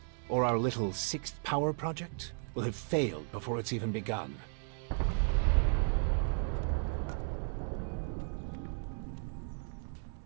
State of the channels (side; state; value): left; silent; 55 dB below the other